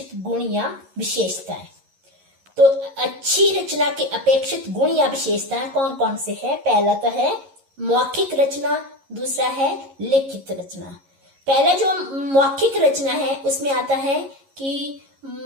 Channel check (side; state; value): left; late; 11 ms